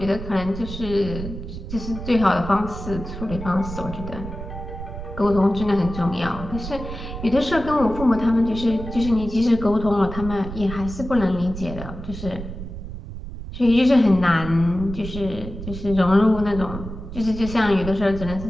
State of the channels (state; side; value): noise; right; rumble, 9 dB below the sound